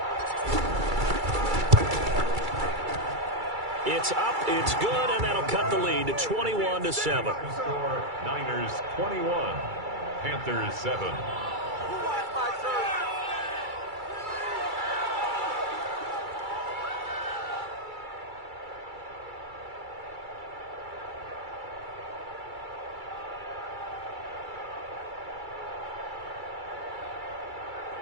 It's up, it's good, and that'll cut the lead to 21-7. Niners 21, Panthers 7.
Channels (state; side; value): late; left; 2.3 ms